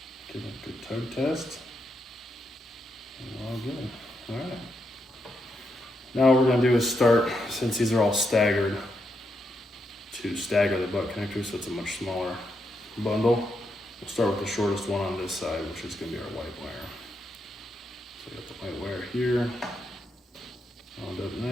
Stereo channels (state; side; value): normal; both; correlation 0.82